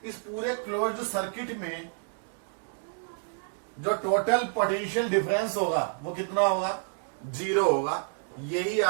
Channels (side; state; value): left; silent; 59 dB below the other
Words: इस पूरे क्लोज्ड सर्किट में जो टोटल पोटेंशियल डिफरेंस होगा वो कितना होगा? जीरो होगा। यही